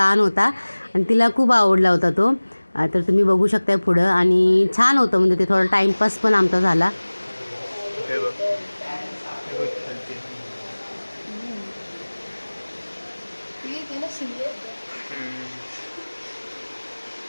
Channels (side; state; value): both; inverted; correlation -1.00